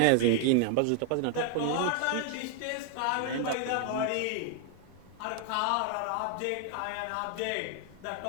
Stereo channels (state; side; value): different; both; correlation 0.00